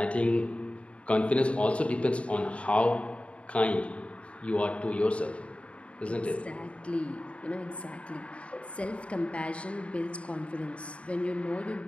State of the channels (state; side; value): late; right; 0.062 ms